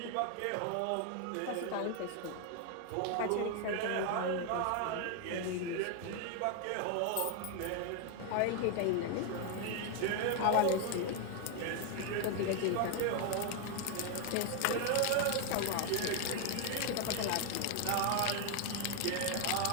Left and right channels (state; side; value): different; both; correlation 0.01